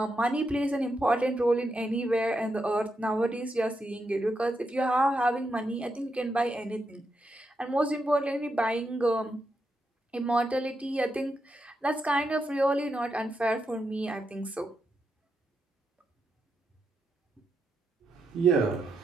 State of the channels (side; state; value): both; normal; correlation 0.84